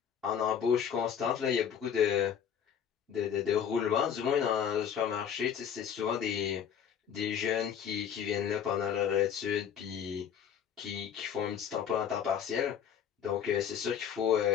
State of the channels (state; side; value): quieter; right; 8.4 dB